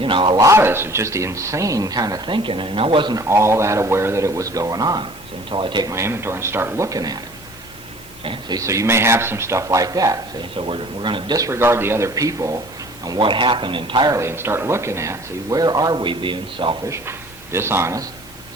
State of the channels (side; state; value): right; noise; hiss, 24 dB below the sound